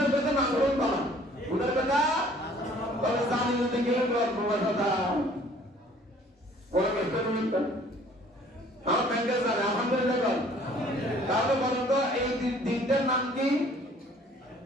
কথা না করুন বাবা, গুনার কথা বলে জানি না কেউ গল্প কথা ওরা ব্যস্ত নয়। আমার ব্যাংকে জানে আলহামদুলিল্লাহ বল। তাহলে বলেন তো এই দিনটার নাম কি?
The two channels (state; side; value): normal; both; correlation 0.55